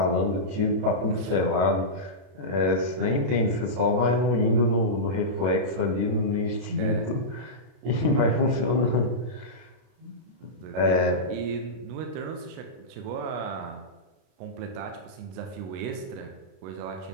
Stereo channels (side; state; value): left; late; 32 ms